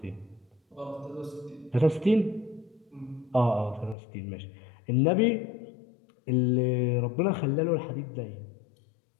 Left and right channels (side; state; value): right; drops out; at 4.0 s